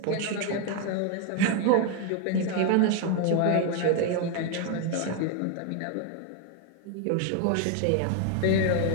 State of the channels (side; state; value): both; different; correlation 0.01